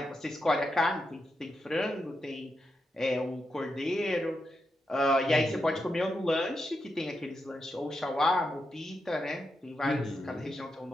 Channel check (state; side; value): normal; both; correlation 0.86